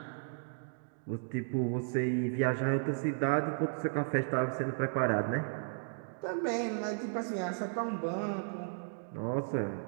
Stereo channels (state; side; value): silent; left; digital silence